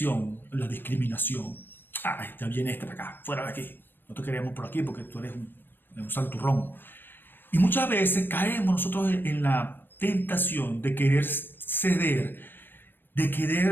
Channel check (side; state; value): right; late; 0.095 ms